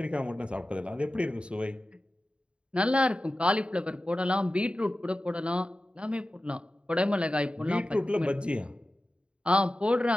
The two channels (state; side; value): late; left; 0.056 ms